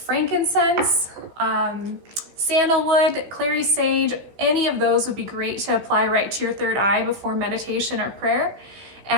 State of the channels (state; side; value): late; left; 15 ms